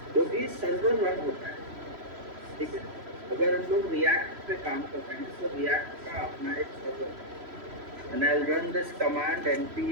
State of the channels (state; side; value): late; left; 3.0 ms